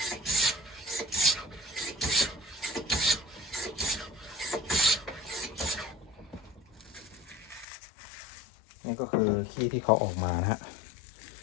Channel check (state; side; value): drops out; right; at 7.7 s